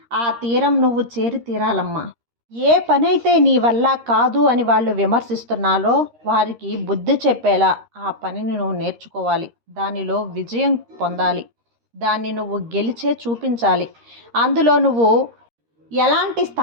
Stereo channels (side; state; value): left; late; 13 ms